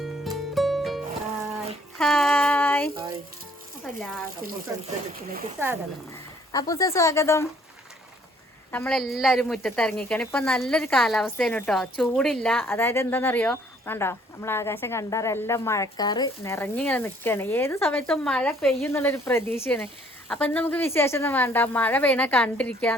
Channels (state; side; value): normal; both; correlation 0.61